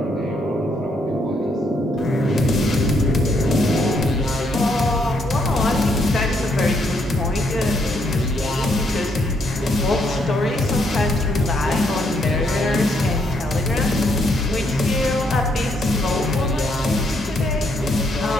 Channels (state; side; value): normal; both; correlation 0.73